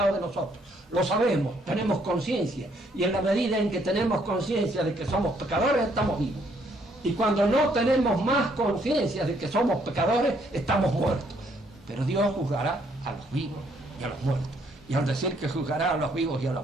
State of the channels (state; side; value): normal; both; correlation 0.69